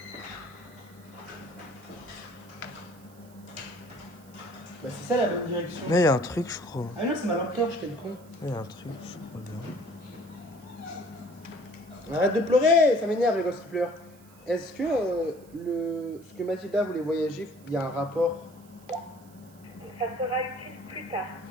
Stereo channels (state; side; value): noise; right; hiss, 27 dB below the sound